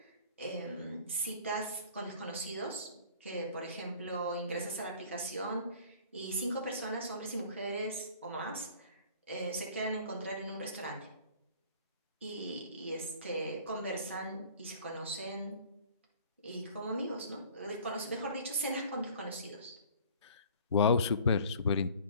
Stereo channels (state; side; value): inverted; both; correlation -0.49